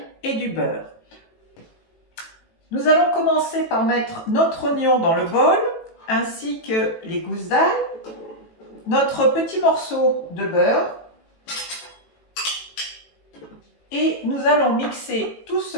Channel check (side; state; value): right; late; 18 ms